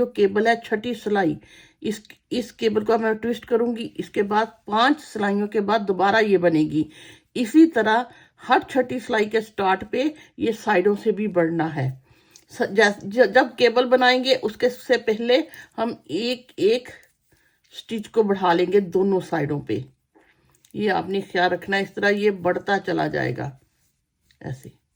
केबल है, छठी सिलाई, इस केबल को मैं ट्विस्ट करूंगी, इसके बाद 5 सिलाइयों के बाद दोबारा ये बनेगी। इसी तरह हर छठी सिलाई के स्टार्ट पे ये साइडों से भी बढ़ना है। जब केबल बनाएंगे उसके से पहले हम एक एक स्टिच को बढ़ा लेंगे दोनों साइडों पे। ये आपने ख्याल रखना, इस तरह ये बढ़ता चला जाएगा ऐसे।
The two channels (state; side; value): identical; both; correlation 1.00